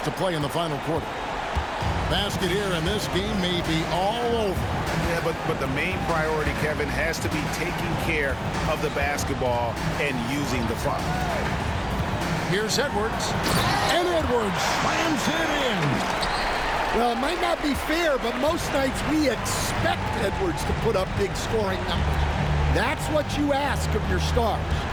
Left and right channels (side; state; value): both; identical; correlation 1.00